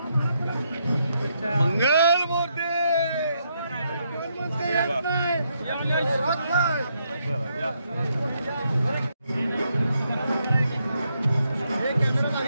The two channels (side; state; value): both; inverted; correlation -0.78